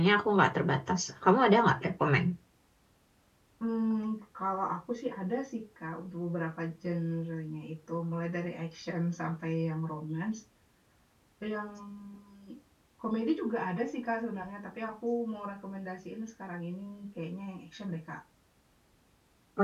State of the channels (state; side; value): identical; both; correlation 1.00